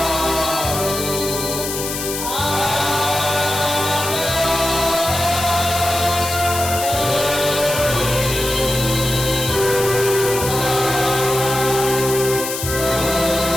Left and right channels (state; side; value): noise; left; hiss, 5 dB below the sound